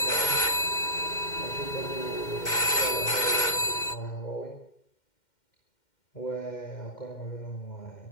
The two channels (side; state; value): right; late; 2.1 ms